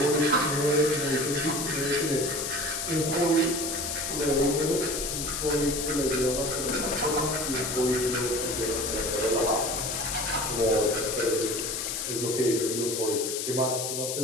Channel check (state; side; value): noise; left; hiss, 3 dB below the sound